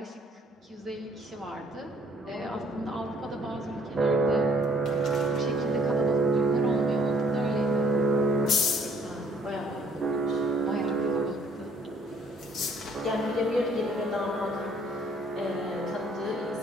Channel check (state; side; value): normal; both; correlation 0.61